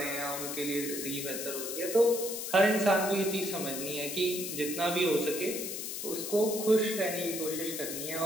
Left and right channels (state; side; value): noise; left; hiss, 5 dB below the sound